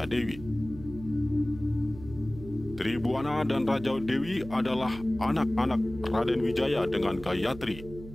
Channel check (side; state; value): right; noise; hum, 14 dB below the sound